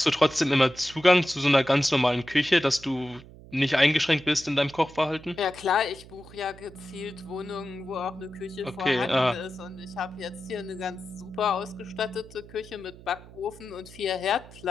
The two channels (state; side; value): noise; right; hum, 19 dB below the sound